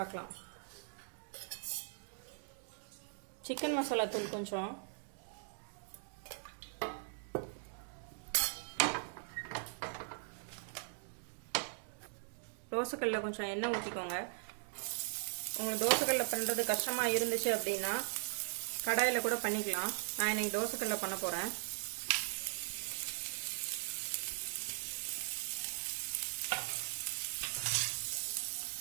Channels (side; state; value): left; silent; digital silence